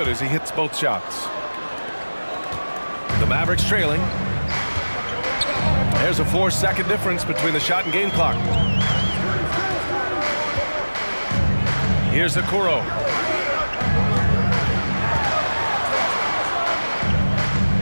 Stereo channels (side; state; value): both; inverted; correlation -1.00